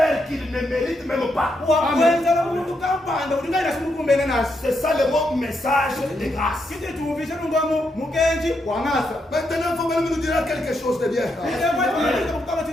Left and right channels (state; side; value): normal; both; correlation 0.80